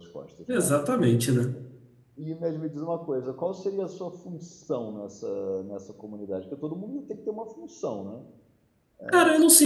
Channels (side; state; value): both; identical; correlation 1.00